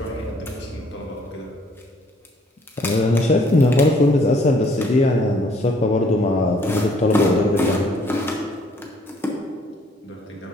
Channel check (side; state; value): both; normal; correlation 0.62